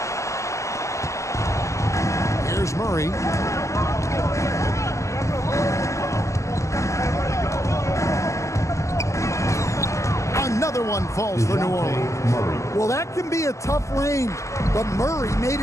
Here's Murray. Another one falls for New Orleans. Well, that can be a tough range, but Murray made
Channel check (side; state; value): right; late; 0.15 ms